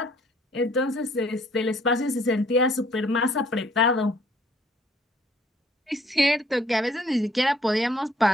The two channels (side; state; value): both; normal; correlation 0.60